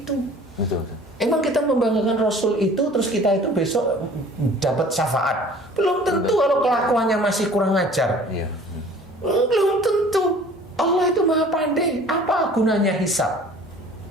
Betul. Emang kita membanggakan Rasul itu, terus kita itu besok dapat syafaat. Belum tentu kalau kelakuannya masih kurang ajar. Iya. Belum tentu. Allah itu maha pandai. Apa gunanya hisab?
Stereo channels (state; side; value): normal; both; correlation 0.49